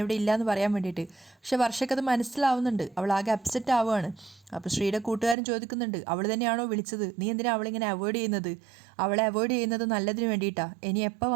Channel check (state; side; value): drops out; left; at 5.4 s